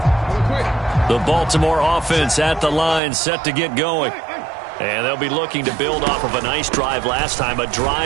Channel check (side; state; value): left; drops out; at 3.0 s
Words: The Baltimore offense at the line, set to get going. And they'll be looking to build off of a nice drive last time, a